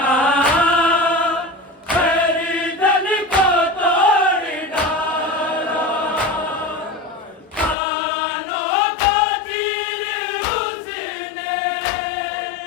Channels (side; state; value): right; drops out; at 7.8 s